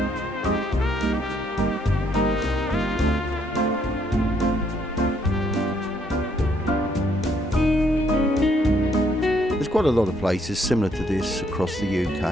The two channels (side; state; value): both; normal; correlation 0.69